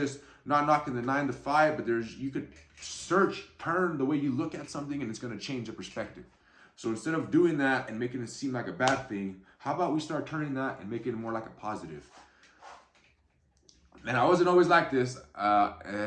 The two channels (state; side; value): identical; both; correlation 1.00